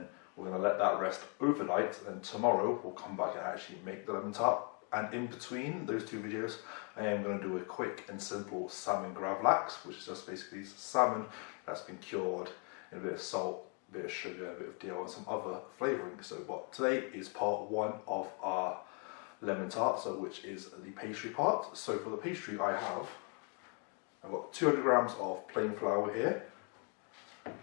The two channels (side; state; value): right; quieter; 37.0 dB